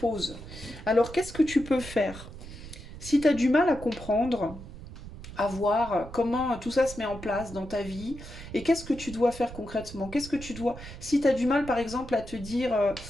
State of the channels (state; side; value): noise; right; rumble, 13 dB below the sound